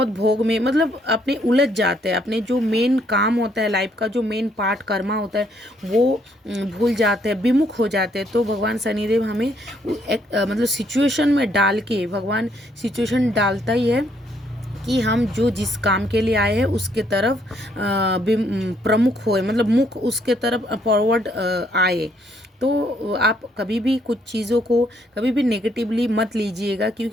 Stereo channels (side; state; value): both; normal; correlation 0.70